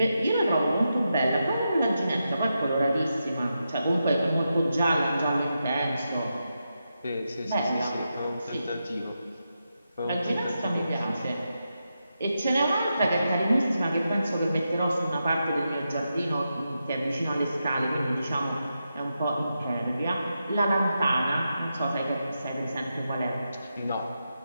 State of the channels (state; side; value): inverted; both; correlation -0.87